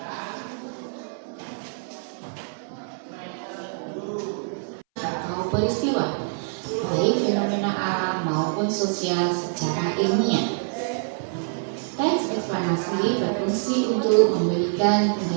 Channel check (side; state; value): left; silent; 61 dB below the other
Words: Peristiwa, baik fenomena alam maupun sosial secara ilmiah. Teks eksplanasi berfungsi untuk memberikan